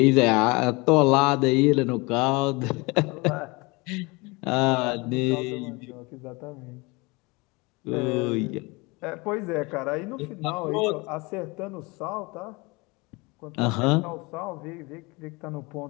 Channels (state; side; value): quieter; right; 25.9 dB